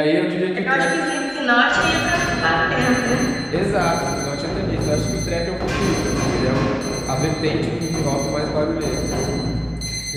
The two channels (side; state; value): both; identical; correlation 1.00